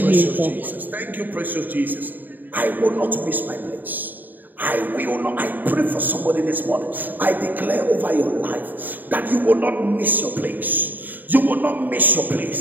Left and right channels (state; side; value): late; left; 0.088 ms